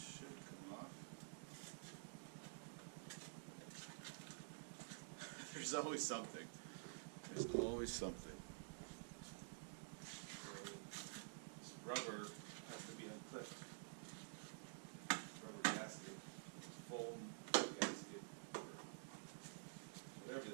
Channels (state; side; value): silent; left; digital silence